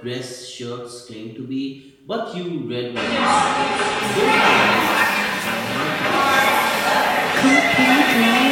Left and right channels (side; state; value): both; identical; correlation 1.00